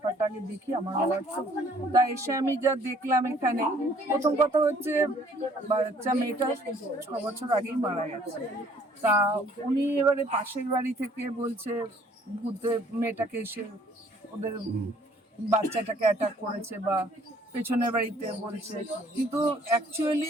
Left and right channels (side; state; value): both; normal; correlation 0.60